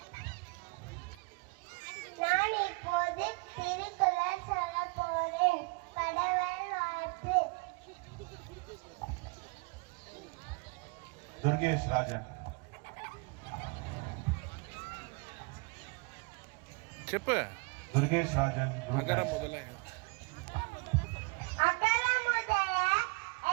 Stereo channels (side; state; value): left; quieter; 29.1 dB